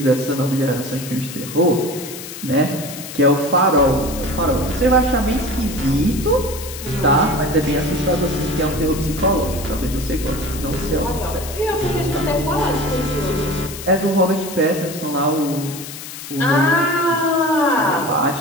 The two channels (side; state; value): left; noise; hiss, 11 dB below the sound